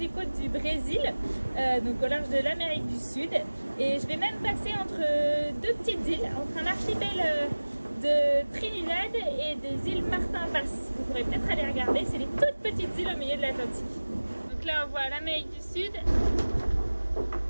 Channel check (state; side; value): inverted; both; correlation -1.00